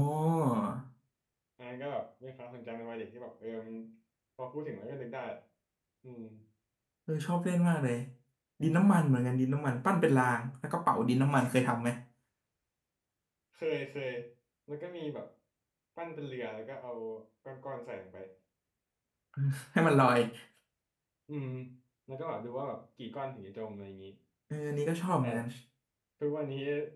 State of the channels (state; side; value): identical; both; correlation 1.00